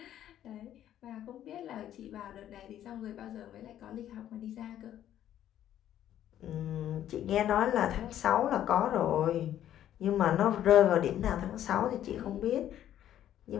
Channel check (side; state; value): right; quieter; 11.4 dB